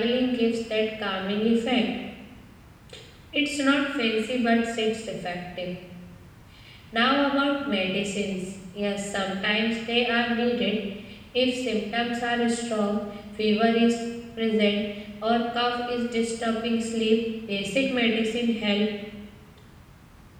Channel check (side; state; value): both; identical; correlation 1.00